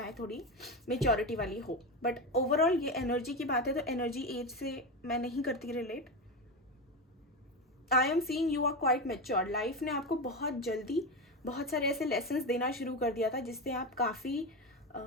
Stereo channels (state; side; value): normal; both; correlation 0.17